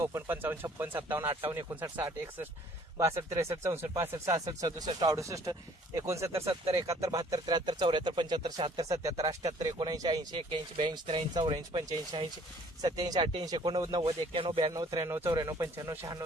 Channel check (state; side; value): normal; both; correlation 0.57